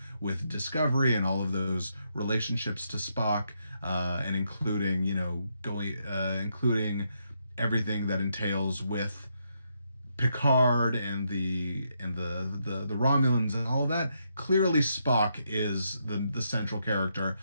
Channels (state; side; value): inverted; both; correlation -0.79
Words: with Discovery and all of those relationships to Spock, and including, including everything that entails with Picard and the Romulans and all of that. Clearly Spock is the central character